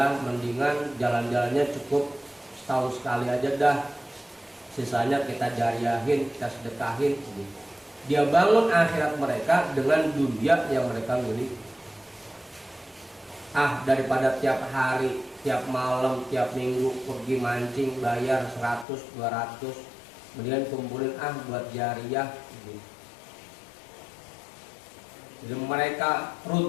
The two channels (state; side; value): drops out; right; at 18.9 s